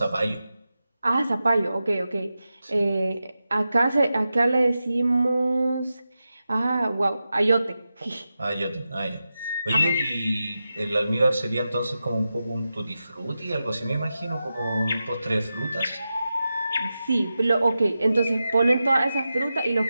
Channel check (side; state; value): both; inverted; correlation -0.91